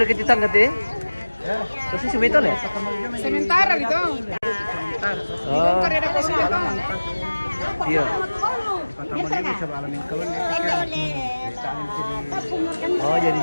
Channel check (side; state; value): both; inverted; correlation -1.00